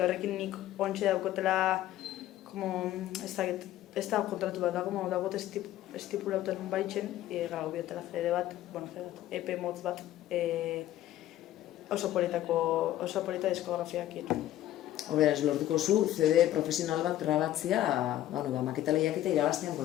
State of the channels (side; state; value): right; quieter; 13.5 dB